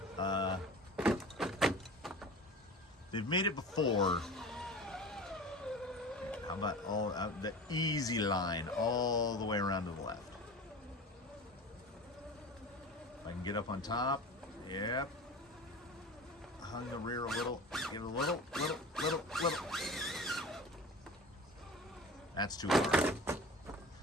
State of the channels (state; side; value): normal; both; correlation 0.36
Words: they've made it before. How about all the easy line all the way around to the left? If I can get up on top, yep. Hung the rear a little, get a little. That's too hard.